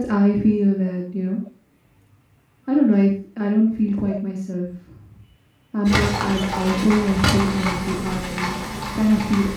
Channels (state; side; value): identical; both; correlation 1.00